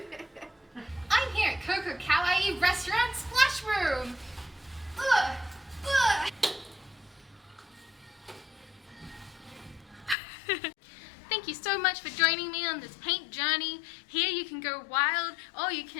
I'm here at KOKO Kawaii Splash Room. Ugh. Ugh. Thank you so much for joining me on this paint journey. Here you can go wild or you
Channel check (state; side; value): drops out; right; at 10.2 s